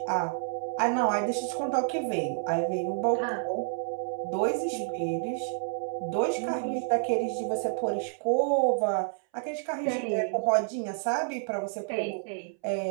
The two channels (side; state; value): left; silent; 58 dB below the other